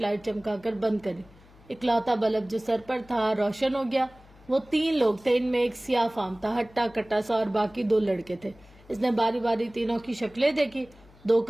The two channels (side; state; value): left; noise; hum, 25 dB below the sound